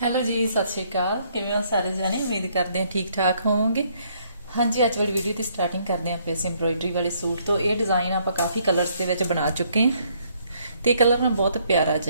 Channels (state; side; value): inverted; both; correlation -0.68